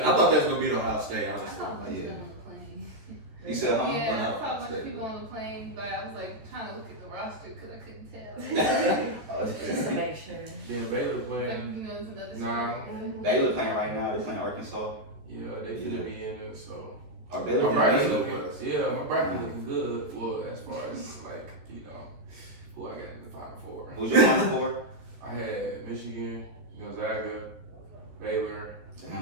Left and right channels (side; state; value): left; late; 14 ms